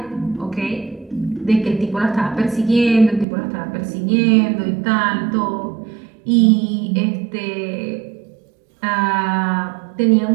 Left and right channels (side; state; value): left; drops out; at 3.2 s